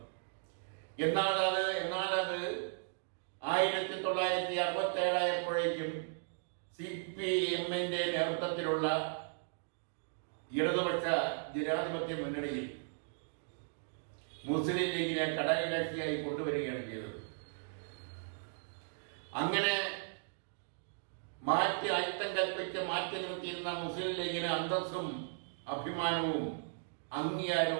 എന്നാൽ അത് 1967 ആയപ്പോഴേക്കും CPM-ന്റെ നേതൃത്വത്തിലുള്ള ഇടതുപക്ഷ ജനാധിപത്യ മുന്നണിയിൽ മുസ്ലിം ലീഗിനെ ഘടകകക്ഷിയായി കൊണ്ടുവരികയാണ് ചെയ്തത്. അങ്ങനെ അയിത്തം കൽപ്പിച്ച് മാറ്റി നിർത്തിയിരുന്ന മുസ്ലിം ലീഗിന് അന്തസ്സും അഭിമാനവും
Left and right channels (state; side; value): silent; left; digital silence